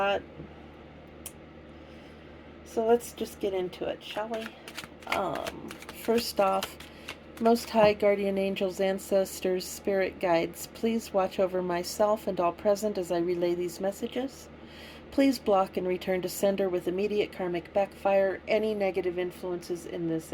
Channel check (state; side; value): identical; both; correlation 1.00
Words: So let's just get into it, shall we? First off, Most High Guardian Angels, Ancestors, Spirit Guides, please watch over myself and all present as I relay these messages. Please block and return to sender with immediate karmic backfire any negative influences in this